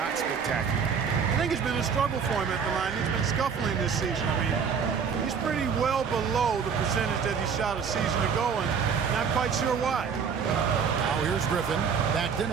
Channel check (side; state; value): left; quieter; 6.5 dB